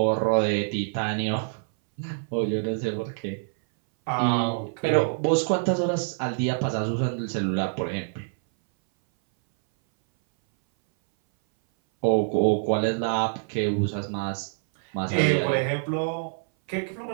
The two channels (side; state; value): left; silent; 59 dB below the other